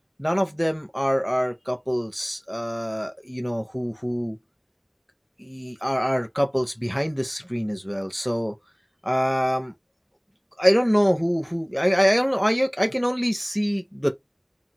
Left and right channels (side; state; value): both; identical; correlation 1.00